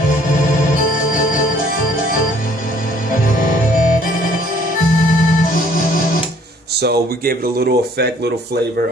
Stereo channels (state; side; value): normal; both; correlation 0.60